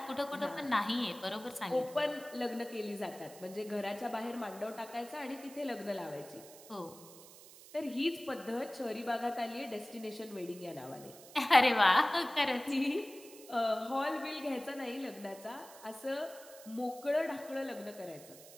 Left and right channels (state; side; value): noise; right; hiss, 18 dB below the sound